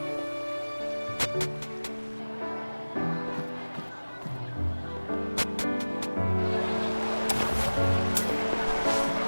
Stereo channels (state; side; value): inverted; both; correlation -1.00